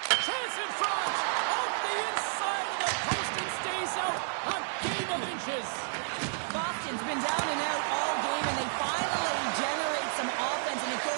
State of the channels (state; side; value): silent; left; digital silence